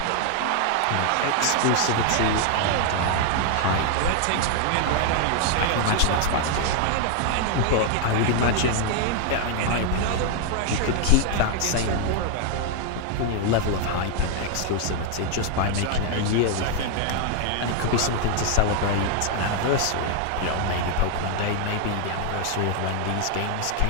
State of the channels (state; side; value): different; both; correlation 0.00